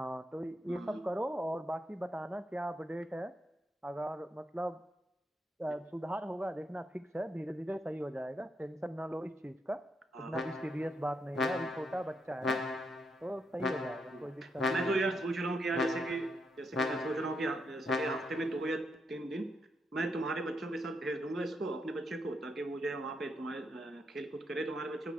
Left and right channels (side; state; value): both; normal; correlation 0.80